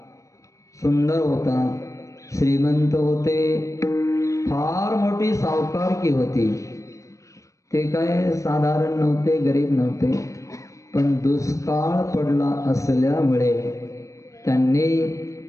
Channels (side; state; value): right; late; 0.15 ms